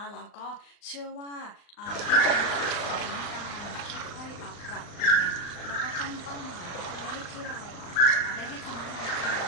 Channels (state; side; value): late; right; 39 ms